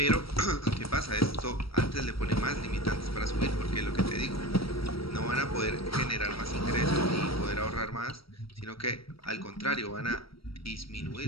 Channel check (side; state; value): right; late; 0.75 ms